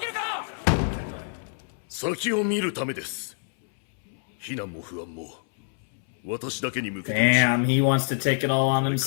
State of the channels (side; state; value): right; silent; 61 dB below the other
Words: るか。先を見るためです。避難も不安も私だけに向けて Damn, he wants to take it all on